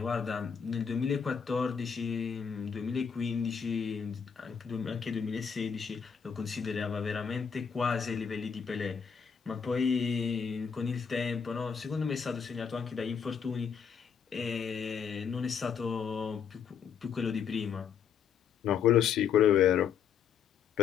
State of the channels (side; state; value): right; quieter; 7.0 dB